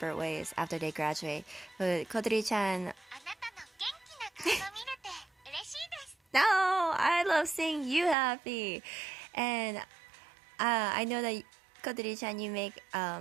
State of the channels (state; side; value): drops out; left; at 8.2 s